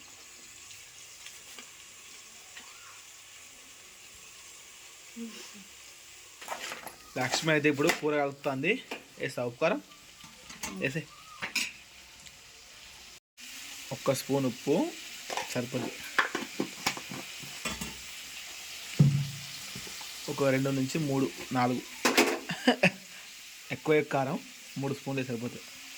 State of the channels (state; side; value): identical; both; correlation 1.00